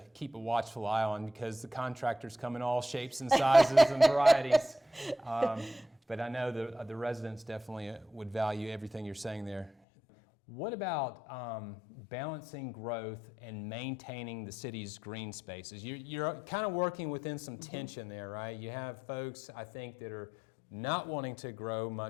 keep a watchful eye on because the contractors come in all shapes and sizes and varieties. But I know the residents definitely would value everything you're saying there. What about balancing growth and maintaining the city's green spaces? You're kind of working within some tension there, right? You have folks, I think, that are not wanting to grow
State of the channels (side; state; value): right; drops out; at 9.7 s